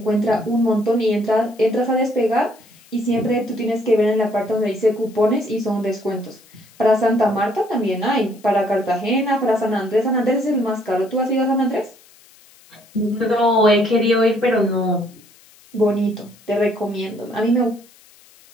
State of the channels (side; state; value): left; noise; hiss, 27 dB below the sound